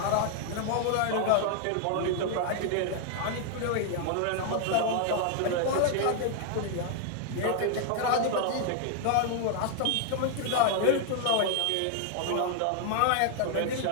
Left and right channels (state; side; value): different; both; correlation 0.00